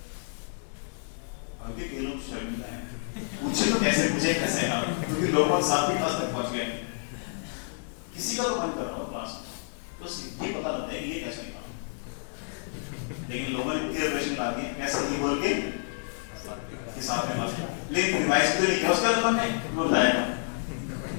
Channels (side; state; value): right; silent; 58 dB below the other